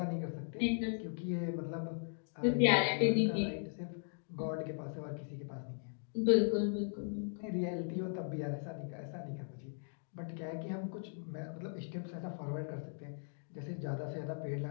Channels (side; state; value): right; silent; digital silence